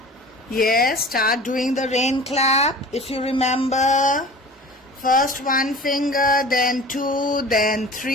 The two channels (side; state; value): both; normal; correlation 0.40